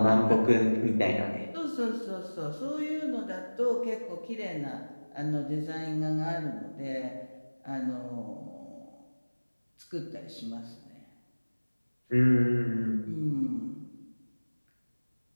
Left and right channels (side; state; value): both; inverted; correlation -1.00